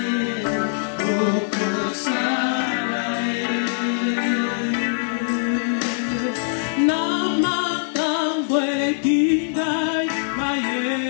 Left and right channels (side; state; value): right; silent; digital silence